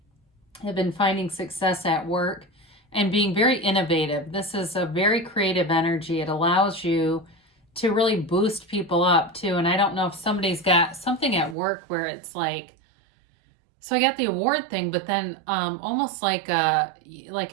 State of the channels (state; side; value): drops out; left; at 11.6 s